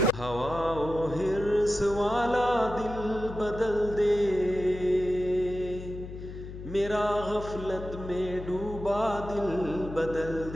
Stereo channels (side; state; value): left; noise; hum, 11 dB below the sound